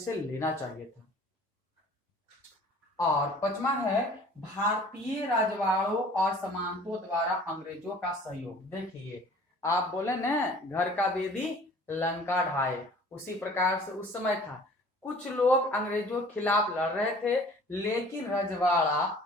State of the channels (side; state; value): both; normal; correlation 0.49